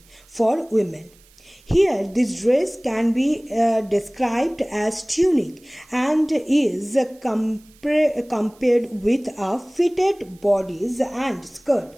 for women. Here, this dress can be described as tunic and is compared with a fitted bodice and skirt.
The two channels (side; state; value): right; noise; hiss, 29 dB below the sound